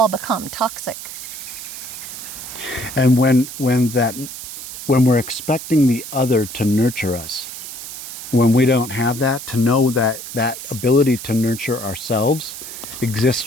become toxic. And when we're expecting the other to nurture us, when we don't have that, to know that ability to nurture ourselves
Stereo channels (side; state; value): right; noise; hiss, 10 dB below the sound